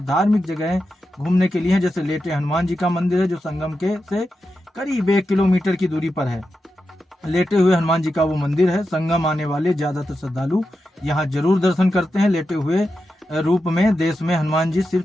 धार्मिक जगहें घूमने के लिए हैं। जैसे लेटे हनुमान जी का मंदिर है जो संगम के से करीब 1 किलोमीटर की दूरी पर है। लेटे हुए हनुमान जी का वो मंदिर है। संगम आने वाले ज्यादातर श्रद्धालु यहाँ जरूर दर्शन करते हैं। लेटे हुए रूप में देश में हनुमान जी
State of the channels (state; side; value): normal; both; correlation 0.89